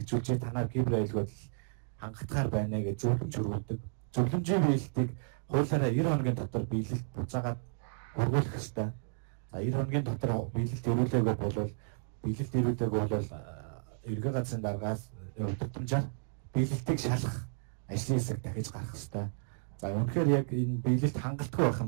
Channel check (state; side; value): silent; left; digital silence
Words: танаар кибер аюулгүй хангалтгаар байна гэж зөвлөмж өргөдөг. Зөвлөмжийн биелэлтийг хуулиараа 90 хоногийн дотор биелэлт буцаагаад хургуулах ёстой. За 90 хоногийн дотор биелэлт ирүүлээгүй бол эргэн газрын даргаас удирдамжаар биелэлтийг шалгах ажлын хэсэг дахиж гарах ёстой. За үнэхээр яг энэ биелэлт хангалтгүй байх юм